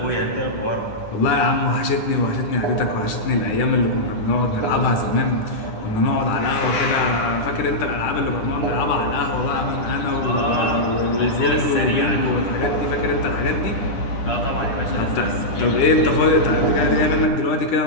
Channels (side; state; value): right; late; 10 ms